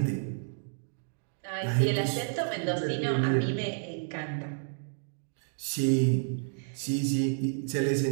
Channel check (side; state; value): left; silent; digital silence